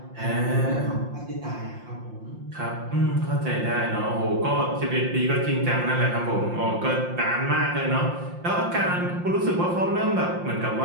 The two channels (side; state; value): left; late; 5.7 ms